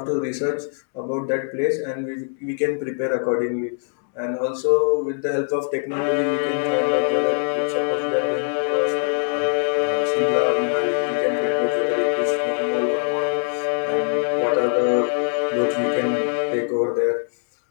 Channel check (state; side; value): silent; right; 64 dB below the other